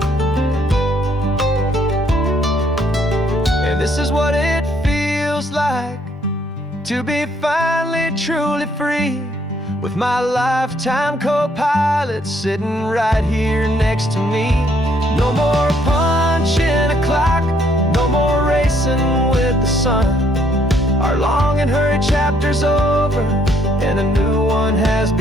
And this is what it feels like to be finally truly free, with my lifetime co-pilot sitting right here next to me. No more punching a clock, no more racing with the sun. Our long and hurried chapter's over and a new one has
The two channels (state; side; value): normal; both; correlation 0.68